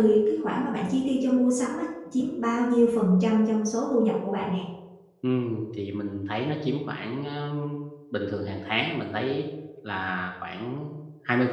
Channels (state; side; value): identical; both; correlation 1.00